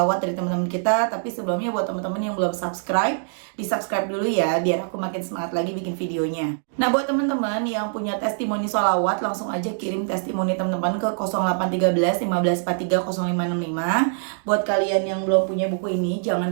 dari teman-teman kita. Tapi sebelumnya buat teman-teman yang belum subscribe, di subscribe dulu ya, biar aku makin semangat lagi bikin videonya. Nah, buat teman-teman yang punya testimoni sholawat, langsung aja kirim testimoni teman-teman ke 0813 1543 0565. Buat kalian yang belum punya buku ini,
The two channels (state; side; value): silent; left; digital silence